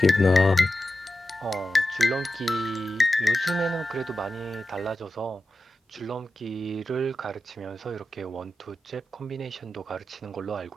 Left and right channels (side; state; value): both; normal; correlation 0.92